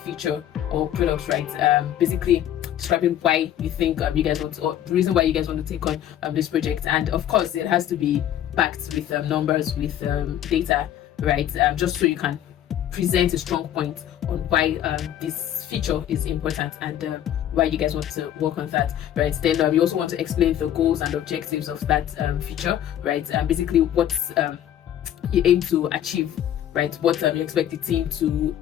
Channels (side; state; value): right; quieter; 11.2 dB